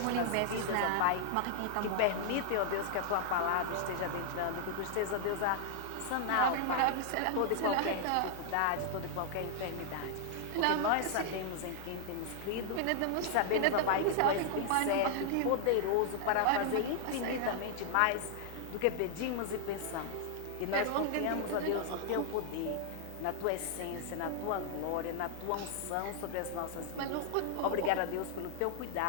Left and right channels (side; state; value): both; different; correlation 0.00